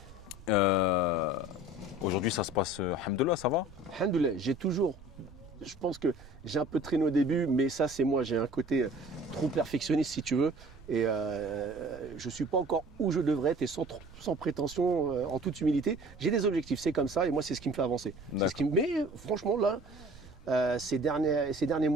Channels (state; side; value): noise; right; rumble, 20 dB below the sound